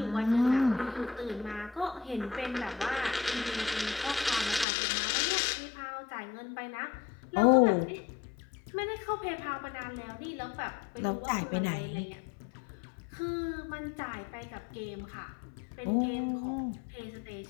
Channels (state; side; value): drops out; right; at 4.7 s